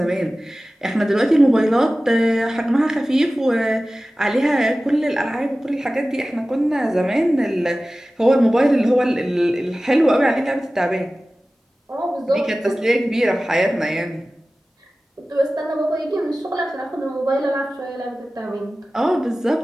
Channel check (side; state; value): both; normal; correlation 0.96